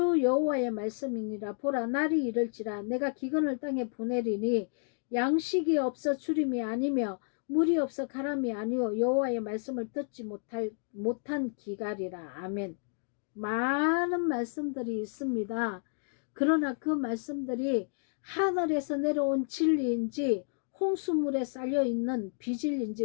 여호와의 말씀이니라. 보라, 날이 이를지라 내가 기근을 땅에 보내리니 양식이 없어 주림이 아니며 물이 없어 가람이 아니요 여호와의 말씀을 듣지 못한 기갈이라. 아멘. 많은 말씀들이 있습니다. 그러나 그 말씀들이 하늘에서 내려온 진리인지 홍수물에 쌓여있는 비진리인지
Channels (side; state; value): right; silent; 57 dB below the other